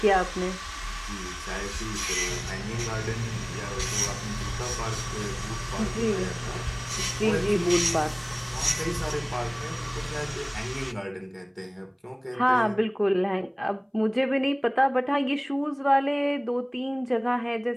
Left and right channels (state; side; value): identical; both; correlation 1.00